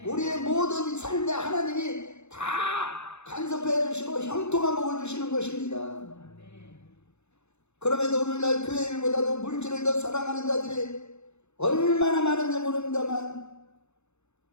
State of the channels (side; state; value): right; late; 0.81 ms